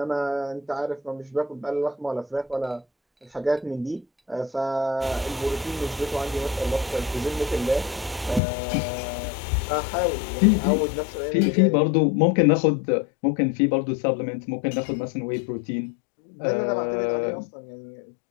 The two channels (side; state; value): right; drops out; at 8.4 s